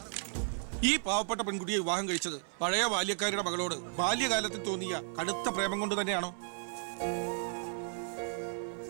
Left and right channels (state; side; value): silent; left; 55 dB below the other